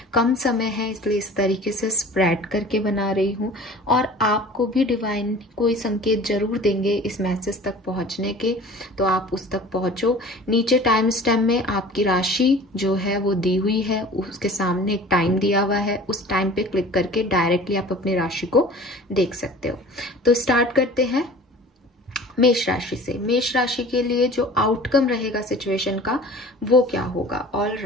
कम समय है इसलिए इस तरीके से स्प्रेड करके बना रही हूँ, और आपको भी डिवाइन कोई संकेत जरूर देंगे इस मैसेज तक पहुंचने के, तो आप उस तक पहुंचो। नीचे टाइम स्टैम्प में आपकी राशि जो है वो दी हुई है, उसके सामने एक टाइम दिया हुआ है, उस टाइम पे क्लिक करके डायरेक्टली आप अपनी राशि को देख सकते हो। तो स्टार्ट करते हैं मेष राशि से। मेष राशि के लिए जो आउटकम रहेगा सिचुएशन का वो क्या होगा। ऑल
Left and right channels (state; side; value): normal; both; correlation 0.43